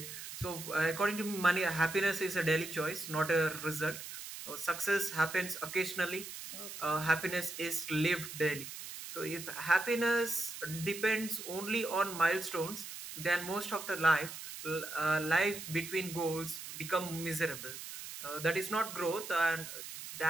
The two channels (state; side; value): noise; right; hiss, 10 dB below the sound